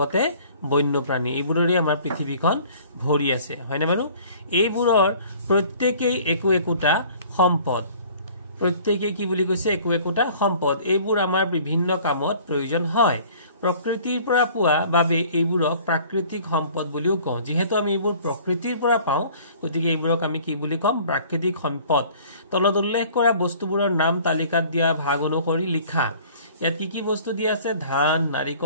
বন্যপ্ৰাণী এইবোৰৰে আমাৰ পৃথিৱীখন ভৰি আছে হয়নে বাৰু এইবোৰৰ প্ৰত্যেকই একোটা সম্পদ প্ৰত্যেকই কি বুলি কৈছে একোটা সম্পদ এইবোৰ আমাৰ বিভিন্ন কামত প্ৰয়োজন হয় প্ৰকৃতিৰ পৰা পোৱা বাবে এইবোৰক প্ৰাকৃতিক সম্পদ বুলিও কওঁ যেহেতু আমি এইবোৰ প্ৰকৃতিৰ পৰা পাওঁ গতিকে এইবোৰক আমি কি বুলি কম প্ৰাকৃতিক সম্পদ তলত উল্লেখ কৰা বস্তুবোৰৰ নাম তালিকাত দিয়া ভাগ অনুসৰি লিখা ইয়াত কি বস্তু দিয়া আছে ধান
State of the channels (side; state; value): both; inverted; correlation -0.51